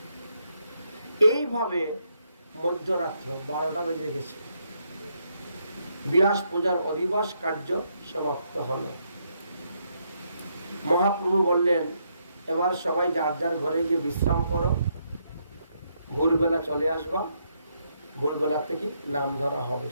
এইভাবে মধ্যরাত্র 12টা বেজে গেছে। ব্যাস পূজার অধিবাস কার্য সমাপ্ত হল। মহাপ্রভু বললেন এবার সবাই যার যার ঘরে গিয়ে বিশ্রাম করো, ভোরবেলা চলে আসবা। ভোরবেলা থেকে নাম ধরা হবে,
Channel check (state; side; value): inverted; both; correlation -0.77